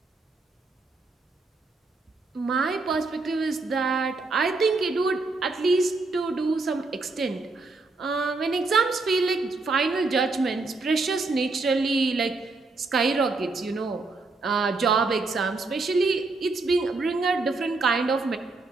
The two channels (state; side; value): quieter; left; 3.6 dB